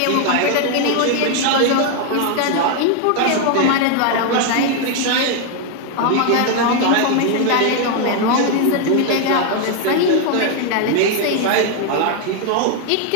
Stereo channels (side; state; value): both; different; correlation 0.01